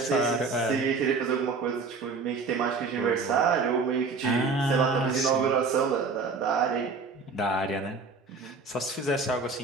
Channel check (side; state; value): left; quieter; 4.4 dB